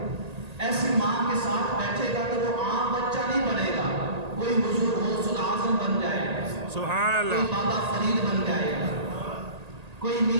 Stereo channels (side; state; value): left; late; 1.8 ms